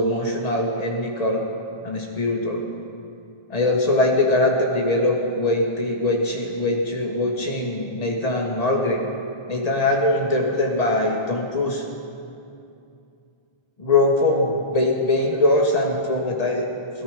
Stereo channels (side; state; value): right; late; 1.8 ms